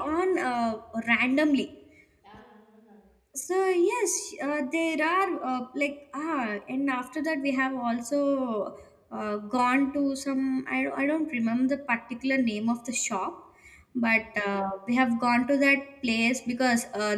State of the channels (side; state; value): both; identical; correlation 1.00